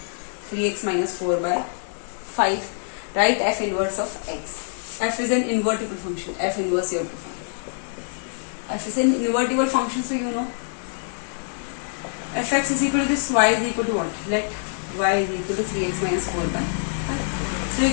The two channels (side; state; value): right; silent; 62 dB below the other